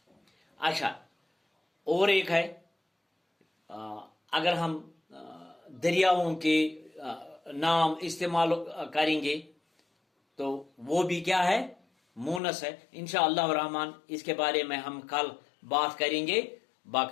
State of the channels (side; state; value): right; drops out; at 12.4 s